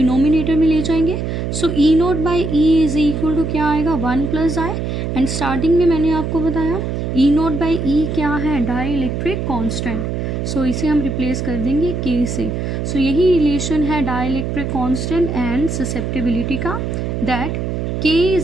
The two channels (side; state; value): right; noise; hum, 2 dB below the sound